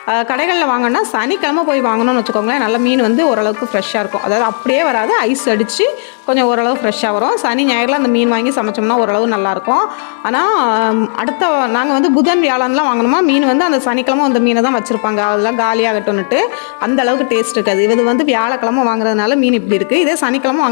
கடைகளில் வாங்கினா சனிக்கிழமை போய் வாங்கணும்னு வச்சுக்கோங்களேன், நல்ல மீன் வந்து ஓரளவுக்கு ஃப்ரெஷ்ஷாக இருக்கும். அதாவது அப்படியே வராது, ஐஸ் அடித்து கொஞ்சம் ஓரளவு ஃப்ரெஷ்ஷாக வரும். சனி ஞாயிறில் அந்த மீன் வாங்கி சமைச்சோம்னா ஓரளவு நல்லாயிருக்கும். ஆனால் அடுத்த நாங்கள் வந்து புதன் வியாழன்லாம் வாங்கணுமா மீன் வந்து அந்த சனிக்கிழமை அந்த மீனை தான் வச்சுருப்பாங்க. அதெல்லாம் காலியாகட்டும்னுட்டு அந்த அளவுக்கு டேஸ்ட் இருக்காது. இது வந்து வியாழக்கிழமை வாங்குறதுனால மீன் இப்படி இருக்குது. இதே சனிக்கிழமை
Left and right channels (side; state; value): right; silent; digital silence